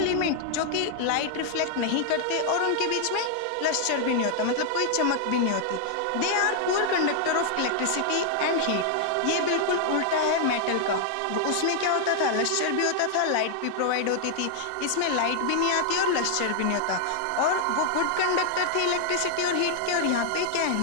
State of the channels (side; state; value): both; different; correlation 0.00